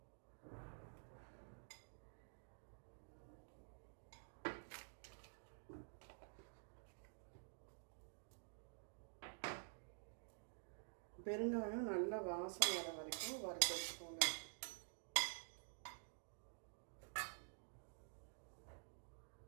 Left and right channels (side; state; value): left; silent; digital silence